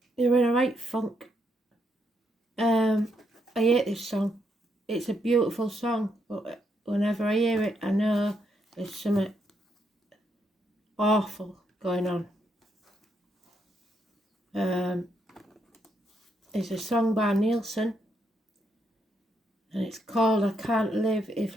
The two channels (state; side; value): normal; both; correlation 0.77